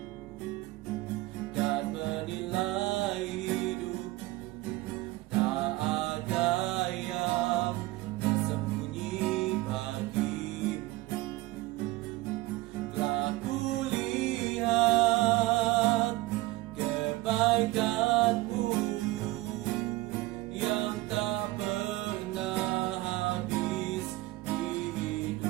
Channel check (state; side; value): quieter; left; 19.2 dB